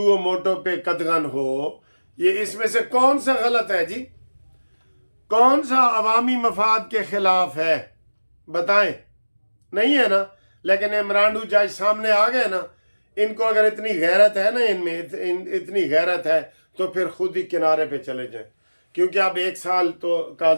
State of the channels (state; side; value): inverted; both; correlation -1.00